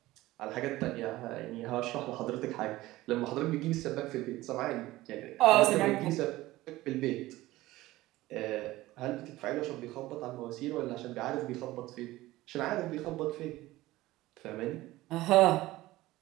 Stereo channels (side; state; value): left; quieter; 17.5 dB